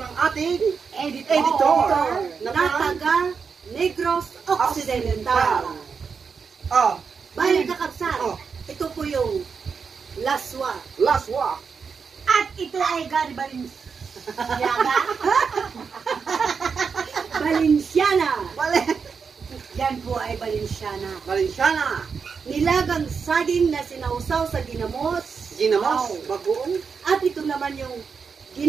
ng ating editor na taga Negros Occidental. Balik ka kabsat. Ito po yung laswa. At ito ay Gary Valenciana. Yan po ay Valenciana. Nilagang saging na sinausaw sa ginamos. Bagoong. At ito naman yung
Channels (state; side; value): quieter; left; 5.7 dB